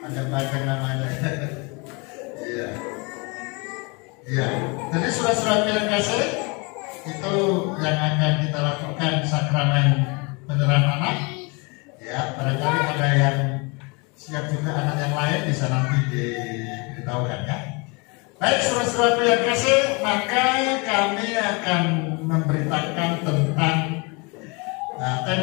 Ada banyak namanya. Iya. Iya. Jadi saudara-saudara yang kasih, itu yang akan kita lakukan sakramen penyerahan anak. Ya, barangkali ada yang siap juga anak yang lain bisa nanti diberitahukan ya. Baik, saudara-saudara yang kasih, maka kami akan memberitakan tentang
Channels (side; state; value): right; quieter; 29.7 dB